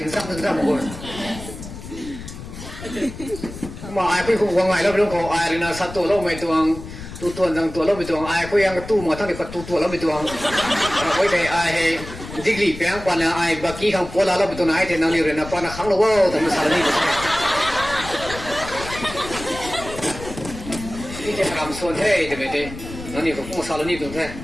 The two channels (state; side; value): noise; left; rumble, 12 dB below the sound